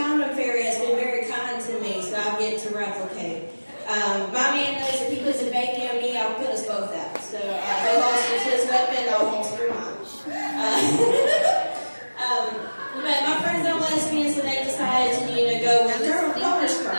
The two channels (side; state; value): both; inverted; correlation -1.00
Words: fairy has been very kind to me, so I'll get to replicate. My man knows if he puts a baby on me, I'll put us both out. So he holsters his weapon, I'll holster mine. But my friends are lesbians, so they decided to, go with donor